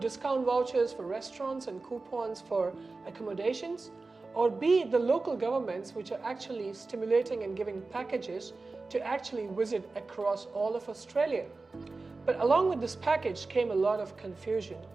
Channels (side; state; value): left; quieter; 3.7 dB